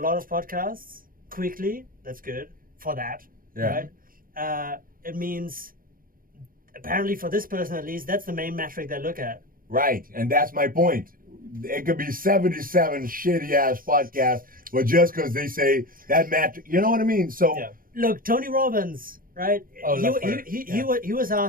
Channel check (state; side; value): late; left; 0.41 ms